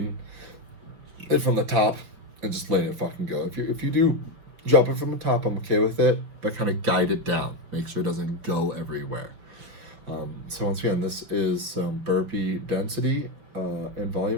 it from the top and just letting it fucking go. If you do drop it from the top, I'm okay with it, but kind of guide it down. Make sure it doesn't go everywhere. So once again, this is burpee density and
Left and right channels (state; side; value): late; left; 5.9 ms